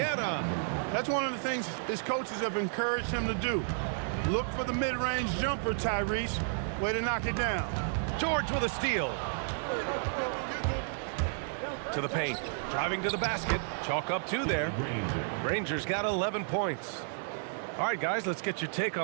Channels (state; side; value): silent; left; digital silence